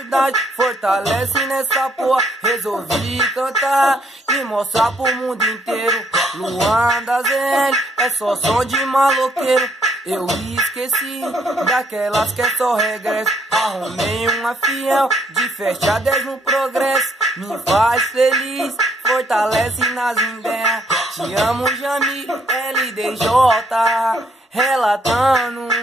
fortalece nessa porra. Resolvi cantar e mostrar pro mundo inteiro. Landazelli é só som de maloqueiro. Eu esqueci daquelas que é só regresso. Arrumei uma fiel de festa 10 no progresso. Me faz feliz, fortalece nas ideias. Te amo, Jamil, LDJ, relatando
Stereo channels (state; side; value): normal; both; correlation 0.69